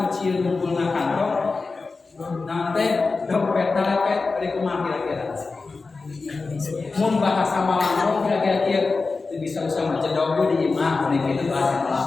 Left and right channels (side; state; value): right; quieter; 4.1 dB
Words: cuci rumput na kantong nanti dompet nalepet pada kumaha kira-kira mun bahasa Malang kira-kira kieu bisa sama cedok di imah pada kitu bahasa